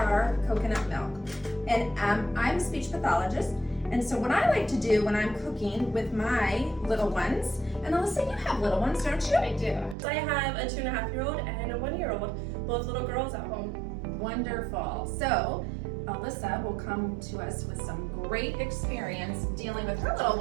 coconut milk, and I'm a speech pathologist, and so what I like to do when I'm cooking with my little ones, and Alyssa, you have little ones, don't you? I do. I have a 2.5-year-old and a 1-year-old, both little girls at home. Wonderful. So Alyssa will come to us with some great experience dealing with her little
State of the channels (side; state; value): left; drops out; at 10.0 s